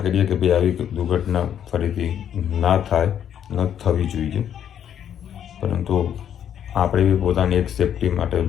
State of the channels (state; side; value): quieter; right; 9.5 dB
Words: કરીએ કે ભાઈ આવી દુર્ઘટના ફરીથી ના થાય, ન થવી જોઈએ. પરંતુ આપણે બી પોતાની એક સેફટી માટે